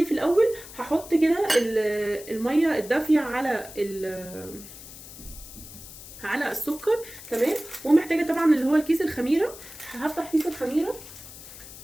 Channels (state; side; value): noise; left; hiss, 15 dB below the sound